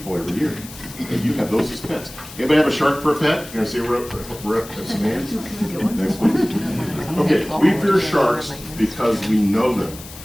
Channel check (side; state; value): left; noise; hiss, 16 dB below the sound